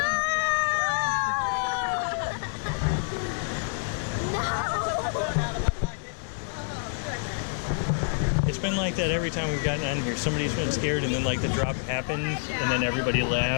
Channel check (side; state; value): right; silent; 57 dB below the other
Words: It's been like that every time we've gotten on here. Somebody's been scared and then like the drop happens and then everybody